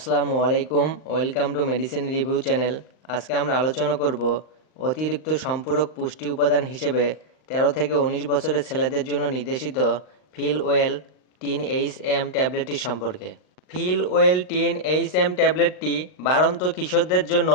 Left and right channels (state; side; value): late; right; 39 ms